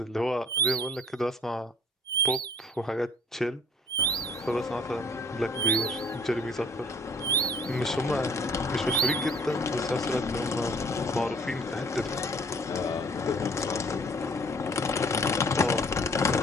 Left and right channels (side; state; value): both; normal; correlation 0.54